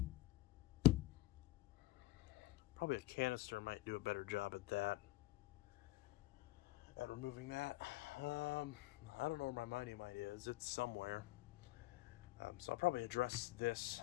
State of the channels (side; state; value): right; quieter; 18.7 dB